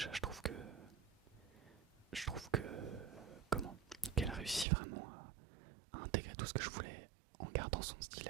je trouve que comment qu'elle a réussi vraiment à intégrer tout ce que je voulais en gardant son style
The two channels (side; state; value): left; drops out; at 4.7 s